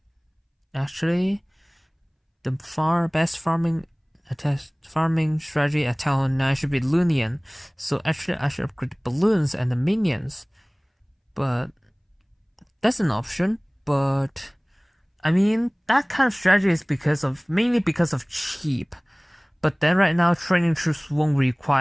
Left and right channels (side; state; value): both; identical; correlation 1.00